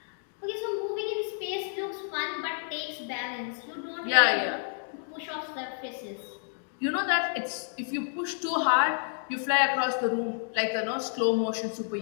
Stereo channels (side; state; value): right; silent; 58 dB below the other